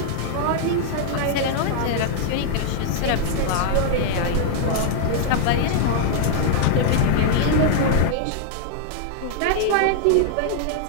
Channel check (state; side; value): different; both; correlation -0.01